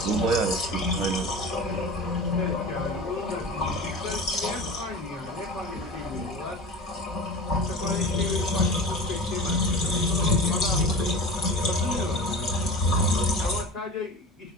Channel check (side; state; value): both; normal; correlation 0.33